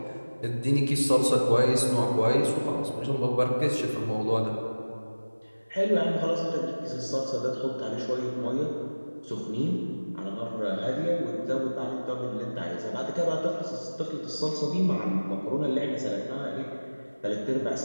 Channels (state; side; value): inverted; both; correlation -1.00